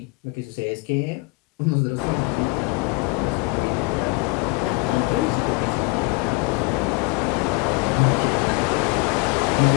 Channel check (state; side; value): quieter; right; 27.3 dB